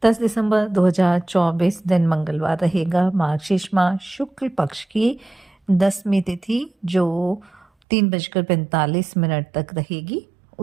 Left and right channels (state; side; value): drops out; left; at 7.7 s